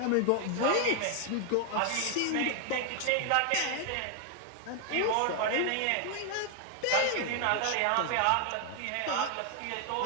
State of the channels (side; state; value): both; different; correlation 0.00